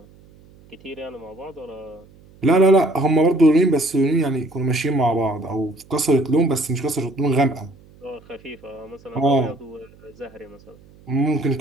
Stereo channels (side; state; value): right; noise; hum, 26 dB below the sound